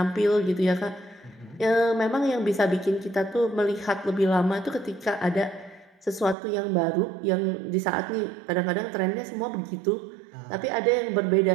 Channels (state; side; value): drops out; left; at 6.4 s